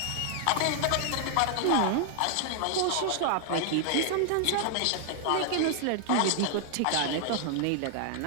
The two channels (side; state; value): both; different; correlation 0.00